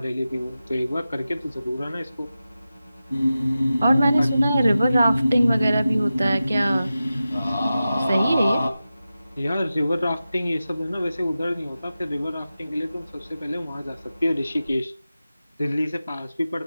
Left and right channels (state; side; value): inverted; both; correlation -0.93